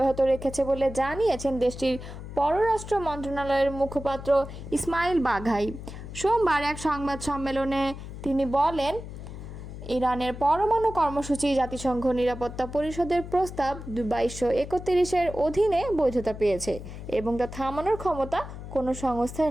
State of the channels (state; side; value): noise; left; hum, 11 dB below the sound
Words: রেখেছে বলে জানিয়েছেন দেশটির পররাষ্ট্র মন্ত্রণালয়ের মুখপাত্র ইসমাইল বাঘাই। সোমবার এক সংবাদ সম্মেলনে তিনি বলেন, ইরানের পরমাণু কর্মসূচি জাতিসংঘ নিরাপত্তা পরিষদের প্রস্তাব 2231-এর অধীনে বৈধতা পেয়েছে এবং তা থামানোর ক্ষমতা কোনো সংস্থার